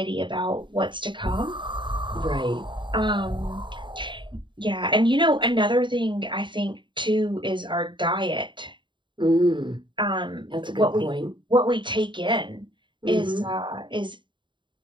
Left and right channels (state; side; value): late; left; 0.23 ms